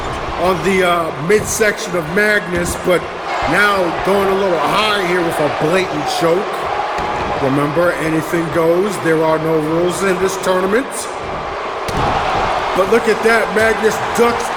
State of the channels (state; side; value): identical; both; correlation 1.00